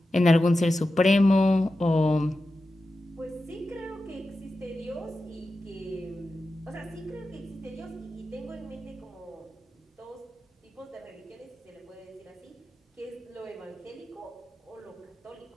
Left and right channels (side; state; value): both; normal; correlation 0.92